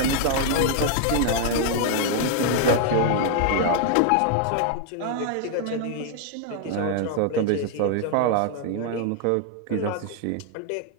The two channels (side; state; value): both; different; correlation 0.00